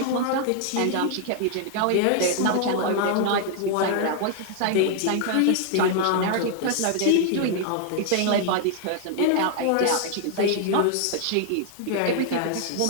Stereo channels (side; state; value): both; different; correlation 0.00